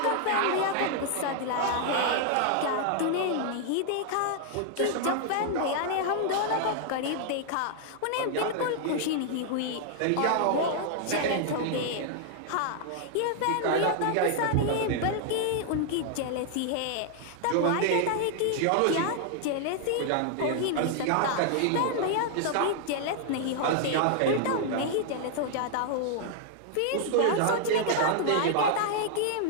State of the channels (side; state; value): both; different; correlation 0.00